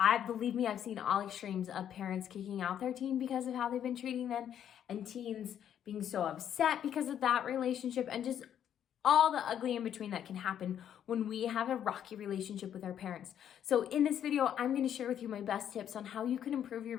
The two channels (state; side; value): quieter; right; 9.7 dB